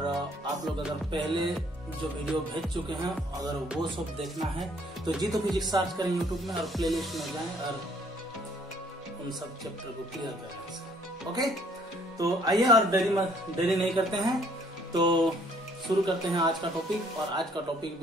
आप लोग अगर पहले जो वीडियो भेज चुके हैं, अगर वो सब देखना है तो जितो फिजिक्स सर्च करें यूट्यूब में और प्लेलिस्ट में जाएं और उन सब चैप्टर को क्लियर करें। ओके, तो आइए और देरी नहीं करते हैं, तो शुरू करते हैं आज का टॉपिक। और आज का टॉपिक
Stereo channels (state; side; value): normal; both; correlation 0.62